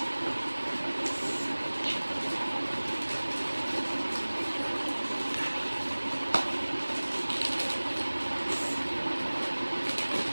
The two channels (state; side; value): inverted; both; correlation -1.00